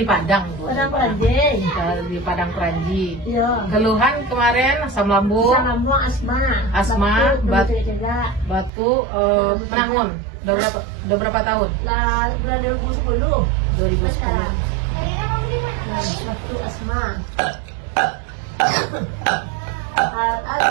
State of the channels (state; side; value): drops out; left; at 8.7 s